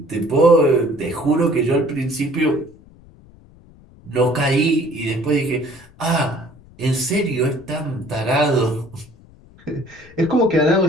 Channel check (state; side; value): noise; left; rumble, 25 dB below the sound